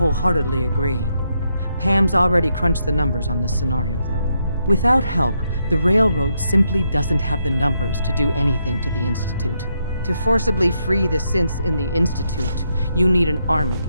agree. Pam's already crunched the numbers on this scenario, though. Without help, the Railroad simply doesn't have the numbers to do anything to the Institute. To forcibly free the synths in the Institute, you need an army.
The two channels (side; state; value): both; inverted; correlation -0.79